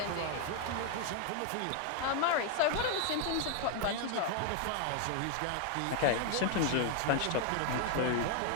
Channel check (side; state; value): both; different; correlation 0.00